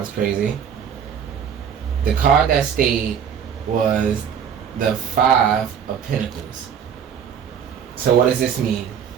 crazy. The card that stayed was the 5 of Pentacles. So what does this mean?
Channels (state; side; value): quieter; left; 8.0 dB